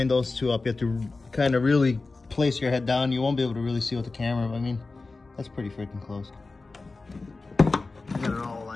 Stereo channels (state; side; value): quieter; right; 3.7 dB